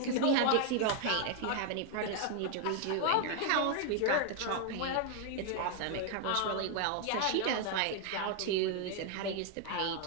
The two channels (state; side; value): different; both; correlation 0.01